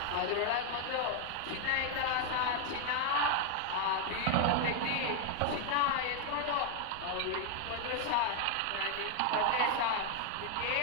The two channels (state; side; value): different; both; correlation 0.01